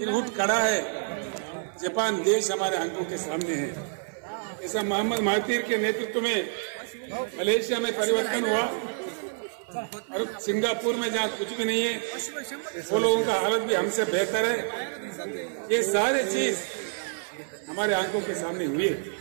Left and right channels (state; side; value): silent; left; 57 dB below the other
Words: उठ खड़ा है। जापान देश हमारे आंखों के सामने है। ऐसा मोहम्मद महातीर के नेतृत्व में मलेशिया में परिवर्तन हुआ, और सिंगापुर में जहाँ कुछ भी नहीं है, वो लोगों का हालत भी हमसे बेहतर है। ये सारे चीज हमारे आंखों के सामने हुई है।